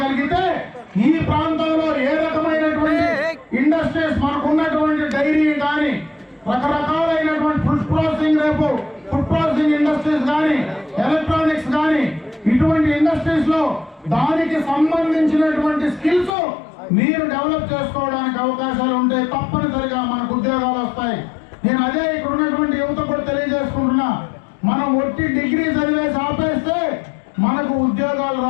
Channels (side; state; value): right; drops out; at 16.3 s